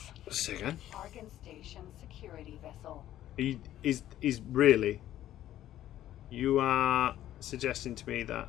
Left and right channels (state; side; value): quieter; right; 12.8 dB